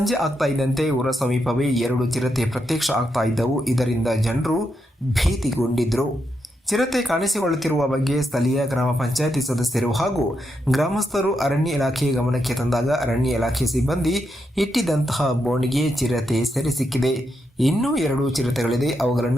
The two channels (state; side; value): normal; both; correlation 0.83